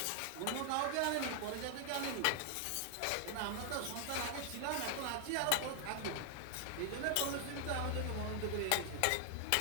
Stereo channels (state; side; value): different; both; correlation 0.00